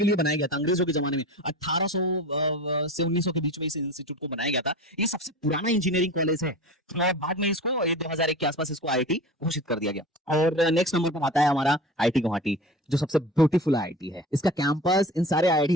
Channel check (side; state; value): both; normal; correlation 0.34